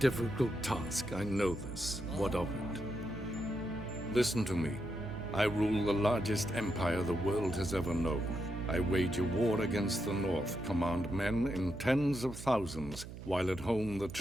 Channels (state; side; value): noise; right; hum, 11 dB below the sound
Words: task, I know this. What of it? Listen to me. I rule the largest empire the world has ever known. I wage a war against the North, command men in tens of thousands, while at home the